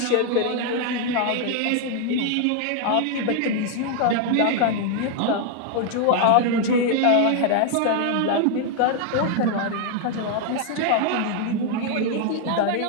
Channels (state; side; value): different; both; correlation 0.00